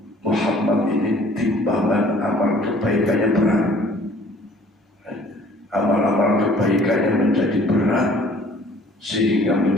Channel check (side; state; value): both; normal; correlation 0.54